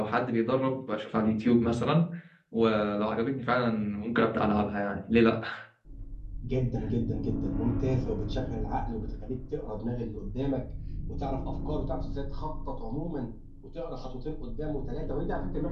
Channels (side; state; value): both; identical; correlation 1.00